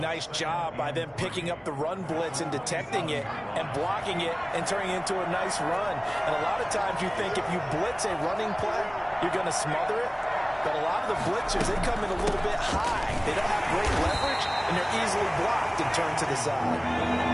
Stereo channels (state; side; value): identical; both; correlation 1.00